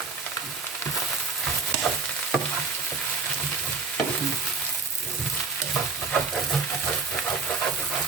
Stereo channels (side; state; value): left; quieter; 4.8 dB